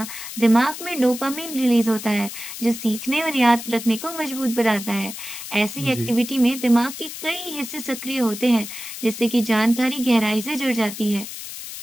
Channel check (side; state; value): left; noise; hiss, 10 dB below the sound